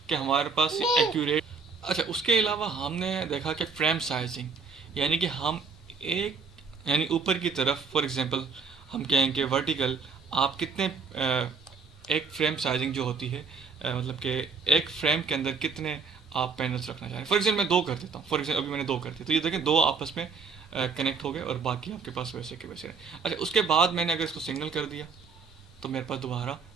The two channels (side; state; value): left; quieter; 4.9 dB